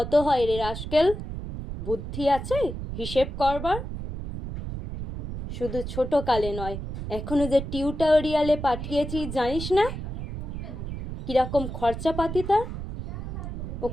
হয় রে রাস্কেল? বুদ্ধি আছে হিসেব করবার? শুধু ছোট কালে নয়, এখনো যে টিউটোরিয়ালে পাঠিয়েছি জানিস না কিরকম খরচাপাতি তার?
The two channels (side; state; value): right; noise; rumble, 7 dB below the sound